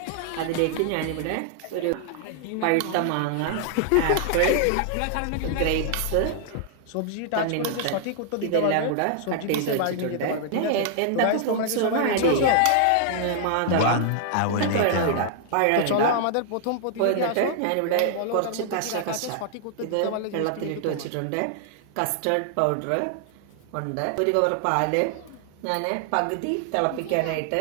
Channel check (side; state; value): both; different; correlation 0.00